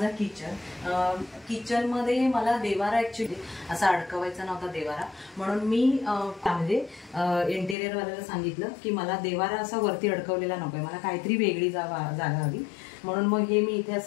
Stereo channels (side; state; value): right; drops out; at 7.8 s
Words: किचन. किचनमध्ये मला देवारा ऍक्च्युली असा अडकवायचा नव्हता देवारा, म्हणून मी म्हणजे इंटेरियरवाल्याला सांगितलं की मला देवारा असा वरती अडकवलेला नकोय, मला काहीतरी वेगळी जागा हवी. म्हणून मग हे मी इथे